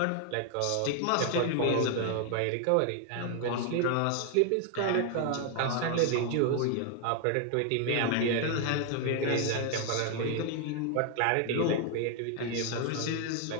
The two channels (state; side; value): different; both; correlation 0.00